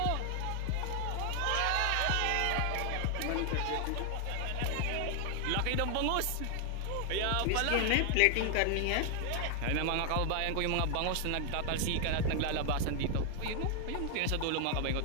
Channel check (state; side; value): different; both; correlation 0.00